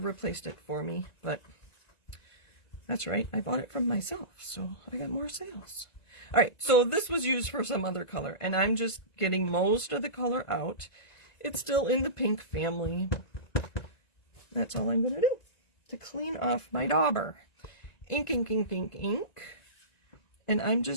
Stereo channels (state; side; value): late; right; 1.9 ms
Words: replaced it for me, but that's right, I bought it from myself, so I got more sales. Alright, so this was used for some other color, and I'm just getting most of the color out. It's still in the pink family. That's all I'm going to do to clean off my dauber. Ink, ink, ink, ink, ink. And I'm